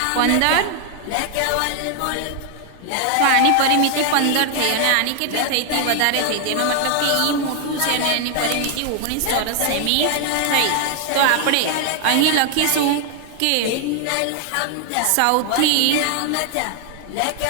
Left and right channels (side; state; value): both; different; correlation 0.00